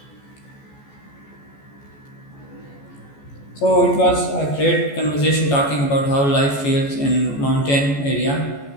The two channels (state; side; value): late; right; 14 ms